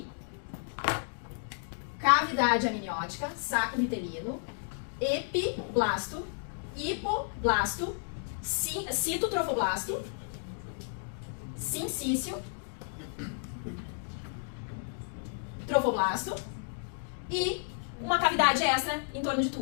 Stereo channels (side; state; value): right; silent; digital silence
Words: cavidade amniótica, saco vitelino, epiblasto, hipoblasto, citotrofoblasto, sincício, trofoblasto e uma cavidade extra em torno de